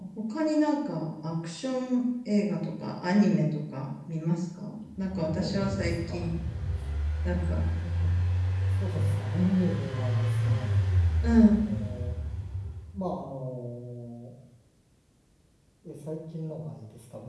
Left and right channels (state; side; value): identical; both; correlation 1.00